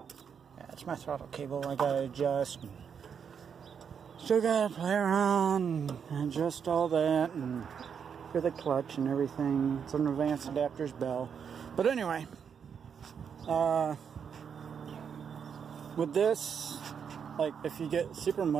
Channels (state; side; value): quieter; left; 7.1 dB